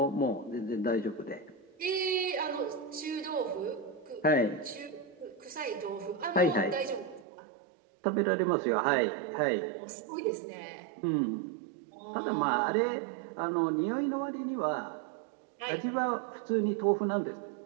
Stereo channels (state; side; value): drops out; left; at 7.2 s